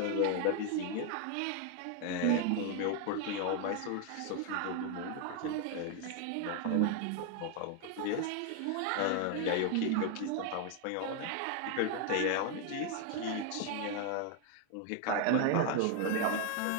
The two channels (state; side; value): different; both; correlation 0.01